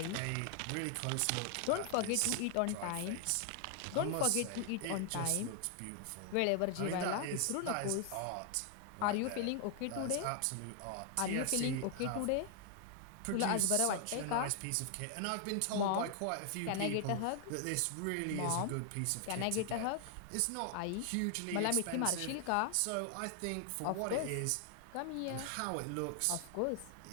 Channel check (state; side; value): different; both; correlation 0.00